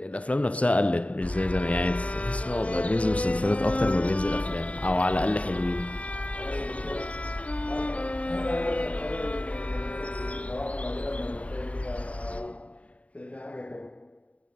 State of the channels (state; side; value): late; right; 0.066 ms